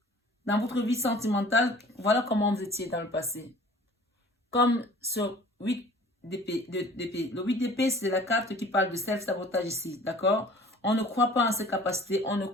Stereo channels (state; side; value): normal; both; correlation 0.48